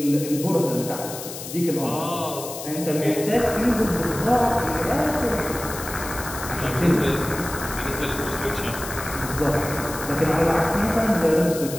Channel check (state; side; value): noise; left; hiss, 10 dB below the sound